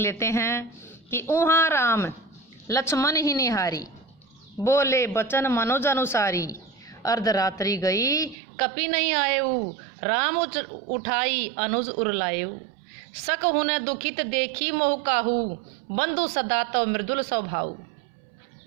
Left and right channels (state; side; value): drops out; left; at 8.3 s